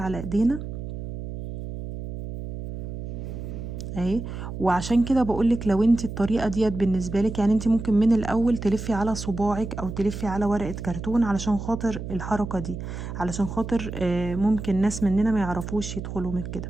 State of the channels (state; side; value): noise; right; hum, 8 dB below the sound